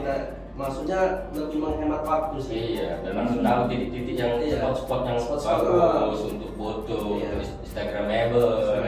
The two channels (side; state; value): both; identical; correlation 1.00